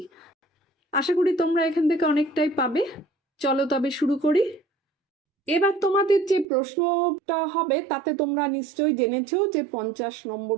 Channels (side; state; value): left; drops out; at 6.5 s